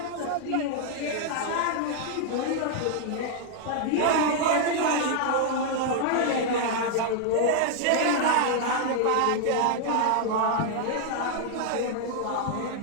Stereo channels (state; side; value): different; both; correlation 0.00